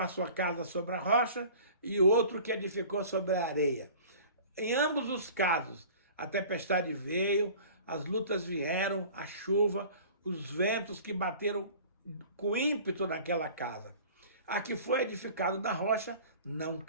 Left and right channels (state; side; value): inverted; both; correlation -0.44